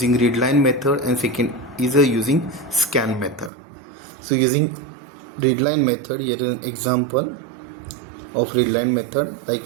readline method and second is using scan method. So using readline method, here is an example of readline method, like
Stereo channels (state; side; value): drops out; left; at 3.5 s